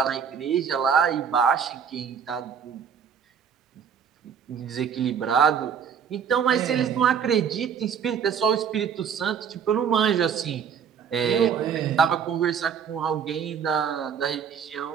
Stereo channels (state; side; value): quieter; left; 7.5 dB